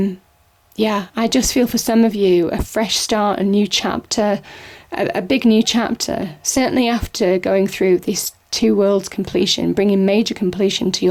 I just feel for some of you a fresh start, a new chapter, a big new chapter. Certainly after going through this two worlds completion, bringing major completion to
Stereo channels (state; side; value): identical; both; correlation 1.00